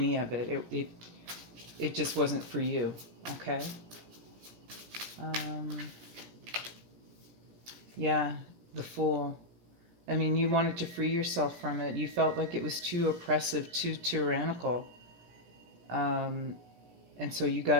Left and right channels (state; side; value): late; left; 17 ms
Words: of it. It just wasn't for you. Okay. Yeah, the Fool. I mean, you wanted to free yourself from it. You felt like it was too oppressive, too tyrannical, and so you